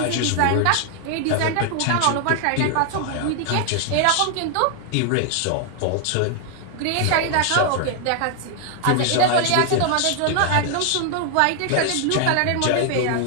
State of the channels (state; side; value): different; both; correlation 0.00